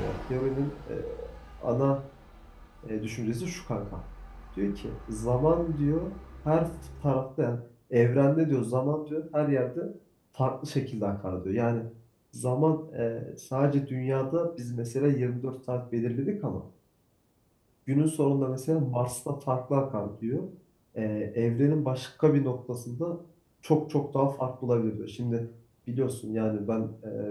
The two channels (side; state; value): both; identical; correlation 1.00